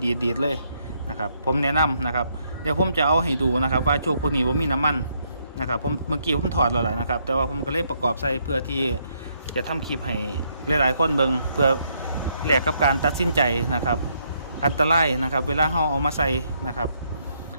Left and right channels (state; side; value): inverted; both; correlation -0.73